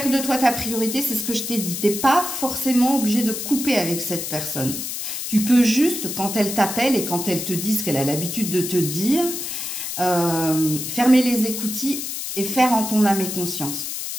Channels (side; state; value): left; noise; hiss, 5 dB below the sound